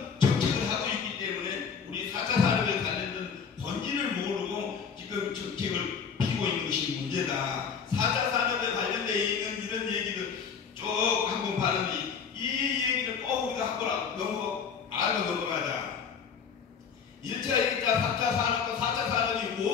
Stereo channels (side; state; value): right; quieter; 6.4 dB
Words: 정책을 하고 있기 때문에 우리 4차 산업에 관련된 본질을 모르고 지금 정책을 피고 있는 것이 문제다. 4차 산업에 관련되어 있는 이런 얘기를 쭉 한번 봤는데 이 얘기를 꼭 우리가 한번 알고 넘어가자. 1차, 2차, 3차 산업과 4차 산업이